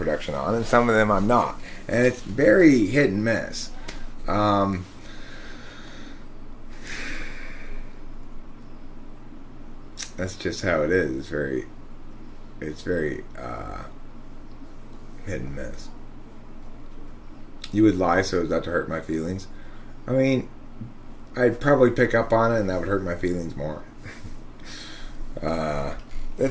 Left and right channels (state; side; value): identical; both; correlation 1.00